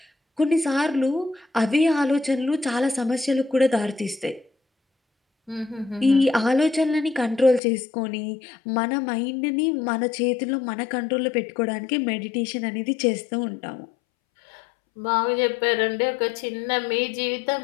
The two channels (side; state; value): right; drops out; at 7.6 s